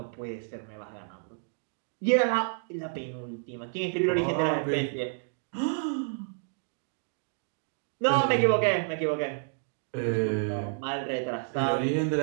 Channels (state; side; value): silent; left; digital silence